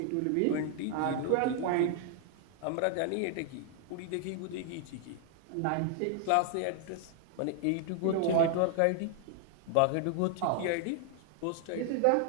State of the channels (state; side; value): different; both; correlation 0.00